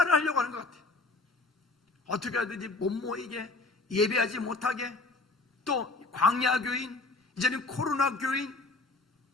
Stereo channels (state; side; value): quieter; right; 3.4 dB